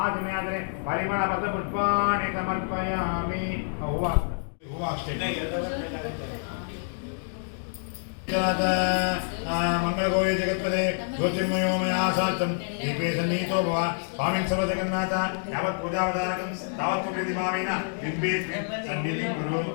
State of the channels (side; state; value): right; silent; digital silence